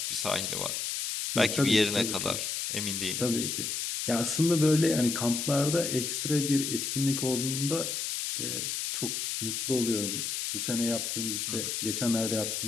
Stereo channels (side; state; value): left; noise; hiss, 2 dB below the sound